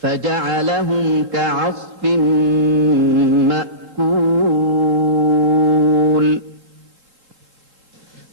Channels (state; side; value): late; left; 3.7 ms